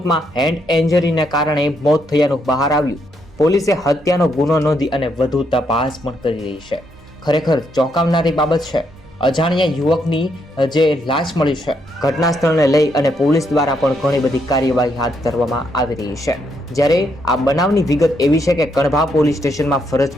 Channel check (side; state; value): both; normal; correlation 0.76